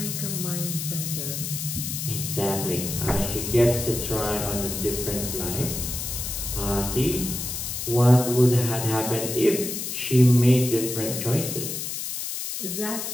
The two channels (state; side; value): noise; left; hiss, 5 dB below the sound